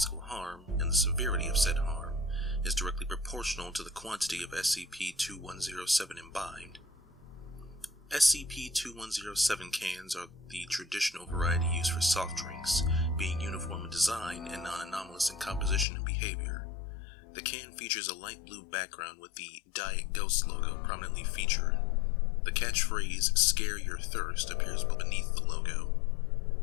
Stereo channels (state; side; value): drops out; right; at 15.9 s